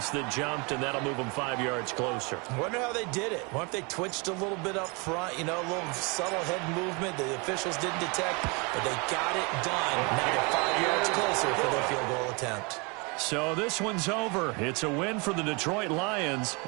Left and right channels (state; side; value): quieter; left; 30.1 dB